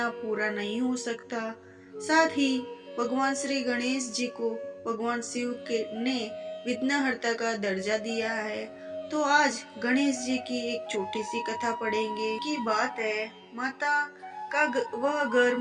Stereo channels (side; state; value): both; identical; correlation 1.00